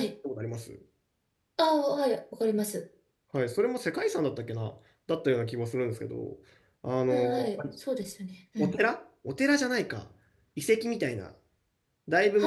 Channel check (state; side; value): identical; both; correlation 1.00